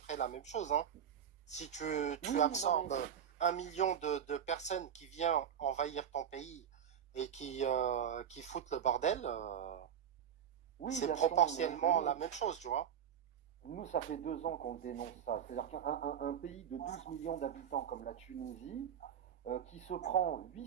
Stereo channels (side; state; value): left; quieter; 8.9 dB